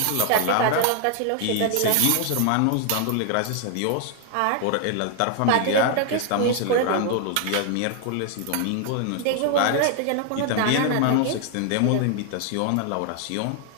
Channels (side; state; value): both; different; correlation 0.00